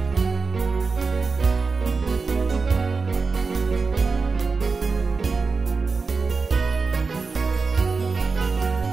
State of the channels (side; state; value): left; quieter; 4.5 dB